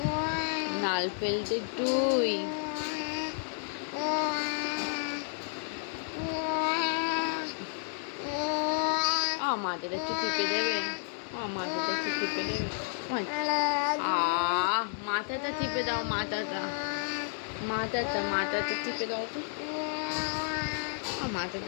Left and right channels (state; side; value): silent; right; digital silence